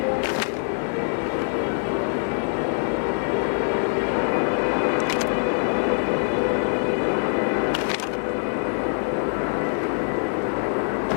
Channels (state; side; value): silent; right; digital silence